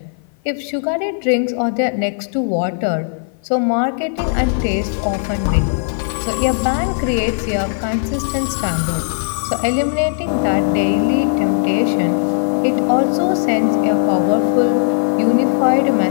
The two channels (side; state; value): right; silent; 55 dB below the other